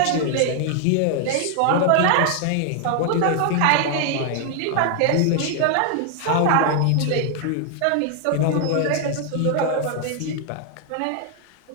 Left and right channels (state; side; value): different; both; correlation 0.00